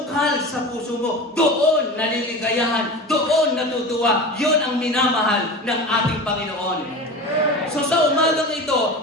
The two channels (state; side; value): normal; both; correlation 0.31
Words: sa puso mo, doon naliligayahan, doon natutuwa. Yun ang minamahal ng ating Panginoon. So sa umagang